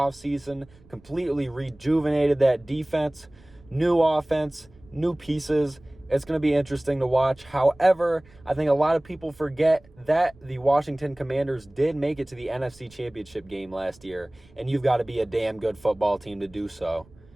completely rejuvenated that defense, new offense, new pieces. It's going to be interesting to watch. However, I think a lot of people forget that the Washington Commanders did make it to the NFC Championship game last year, and you've got to be a damn good football team to do so.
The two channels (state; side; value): noise; right; rumble, 27 dB below the sound